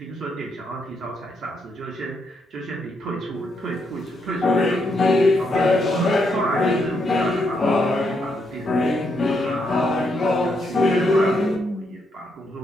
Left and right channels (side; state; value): both; normal; correlation 0.78